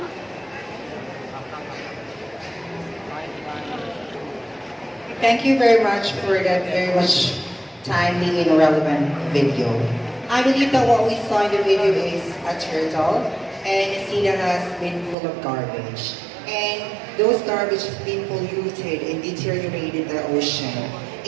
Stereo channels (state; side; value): drops out; left; at 15.2 s